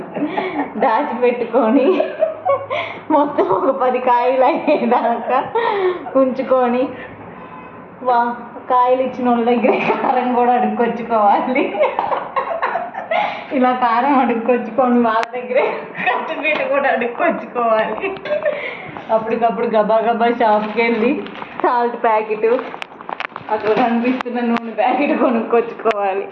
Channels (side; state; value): both; identical; correlation 1.00